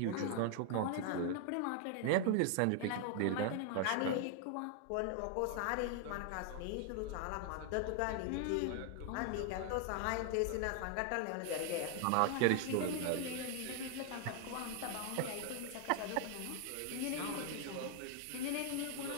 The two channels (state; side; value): different; both; correlation 0.00